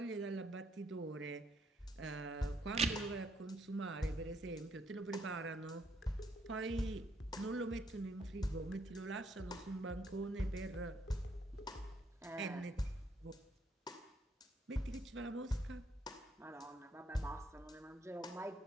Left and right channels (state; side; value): normal; both; correlation 0.72